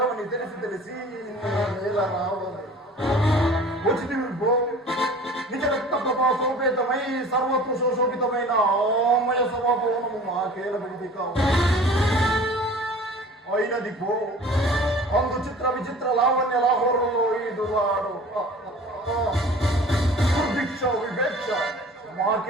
తెలిసి నేల రావాలి. వచ్చింది నిజ రక్త ప్రభా సోపేతమై సర్వత్వ శోషోపితమైన ఆమయ సభాభవనము మాకేల విడిది కావు. అయినది పో అందు చిత్ర విచిత్ర లావణ్య లాహోరంలో ఈదువాడు దుర్భిక్ష వివేక్ష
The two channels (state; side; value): normal; both; correlation 0.44